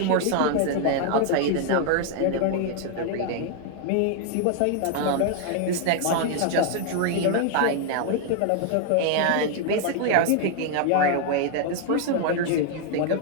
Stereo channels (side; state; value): both; different; correlation 0.00